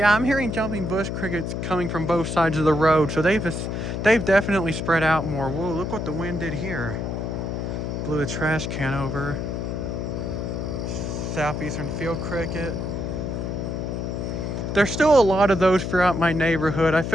I'm hearing jumping bush crickets coming from both sides of the road, so they've definitely spread out more. Whoa, look what the wind did here. Blew a trash can over. Southeastern field cricket. There's still a lot of those throughout my neighborhood. I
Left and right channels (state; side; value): noise; left; hum, 3 dB below the sound